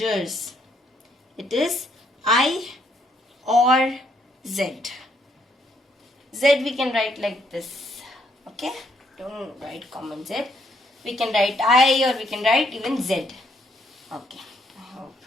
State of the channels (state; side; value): normal; both; correlation 0.72